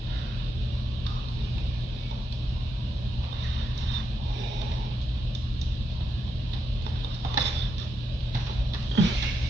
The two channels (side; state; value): both; normal; correlation 0.83